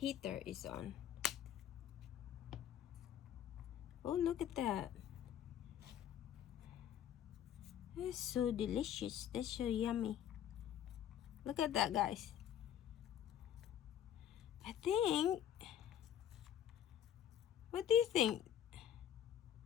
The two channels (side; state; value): right; quieter; 10.3 dB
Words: is on. Oh, look at that. That's so delicious. That's so yummy. Look at that, guys. I think, what do you think?